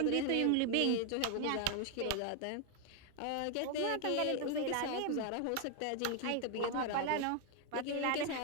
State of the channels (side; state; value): both; different; correlation 0.01